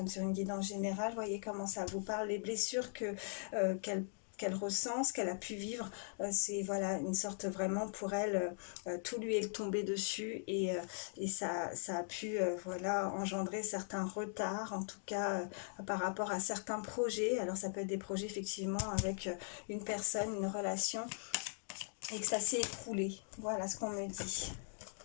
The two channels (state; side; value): silent; right; digital silence